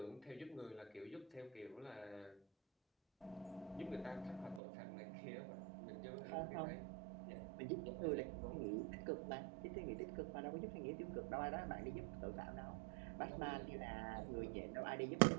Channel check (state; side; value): drops out; left; at 4.6 s